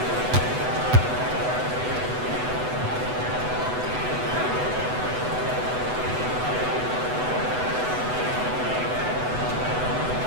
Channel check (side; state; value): left; late; 8.0 ms